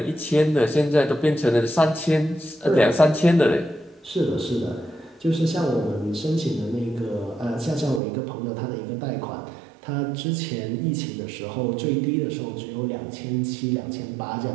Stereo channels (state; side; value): drops out; left; at 8.0 s